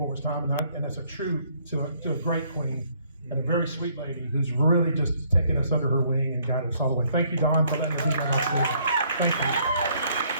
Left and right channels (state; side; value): inverted; both; correlation -0.66